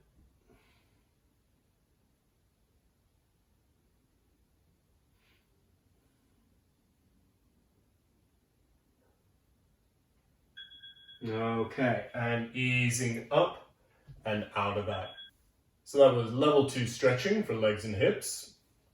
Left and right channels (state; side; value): identical; both; correlation 1.00